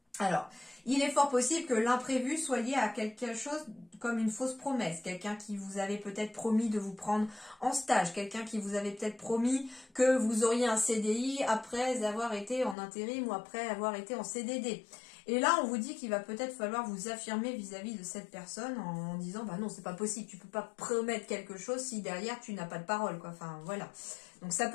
Alors, il est fort possible que l'imprévu soit lié à quelque chose comme une fausse promesse, quelqu'un qui vous avait peut-être promis de vous prendre en stage, quelqu'un qui vous avait peut-être promis que vous auriez un CDI après avoir été en intérim ou après avoir été en CDD. Et là, on vous dit qu'il va peut-être falloir vous affirmer vis-à-vis de cette personne en disant « bah non, c'est pas possible, tu peux pas promettre quelque chose si derrière tu n'as pas de parole, quoi. » Enfin, voilà. Donc, ça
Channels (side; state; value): right; drops out; at 12.8 s